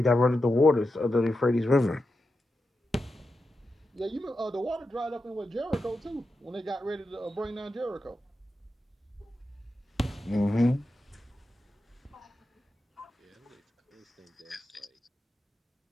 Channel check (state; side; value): normal; both; correlation 0.89